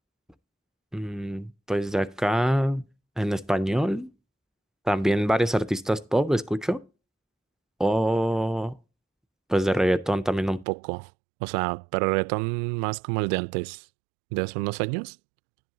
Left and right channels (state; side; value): drops out; left; at 10.7 s